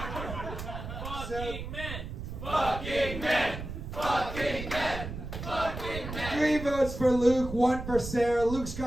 Fucking men! Fucking men! Fucking 3 votes for Luke, 1 for Sarah. Luke's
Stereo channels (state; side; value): noise; right; rumble, 8 dB below the sound